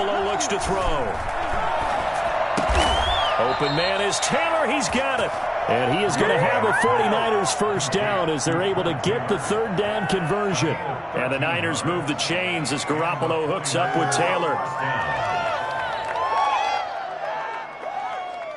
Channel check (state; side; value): identical; both; correlation 1.00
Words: looks to throw. Open man is Taylor. He's got it. And he is going to have a 49ers first down as they're able to get the third down conversion. And the Niners move the chains as Garoppolo hooks up with Taylor.